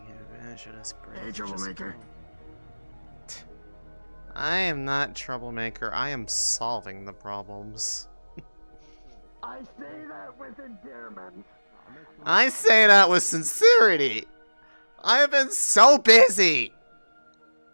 advantage of this bridge. Hey, Troublemaker. I am not troublemaker. I am solving the problems. I say that with endearment. I say that with sincerity. I have been so busy.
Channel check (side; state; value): both; inverted; correlation -1.00